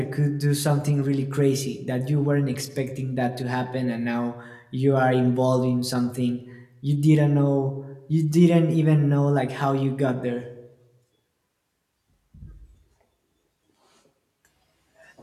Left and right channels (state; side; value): identical; both; correlation 1.00